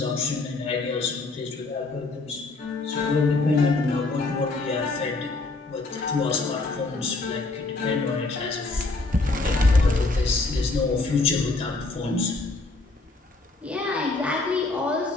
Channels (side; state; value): right; quieter; 3.4 dB